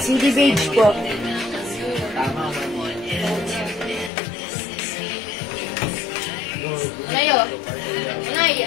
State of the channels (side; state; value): right; drops out; at 4.1 s